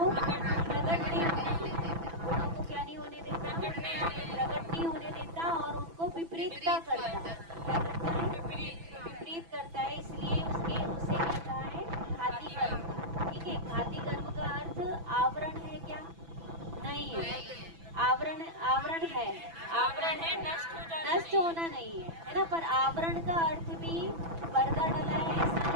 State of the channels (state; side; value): late; left; 6.0 ms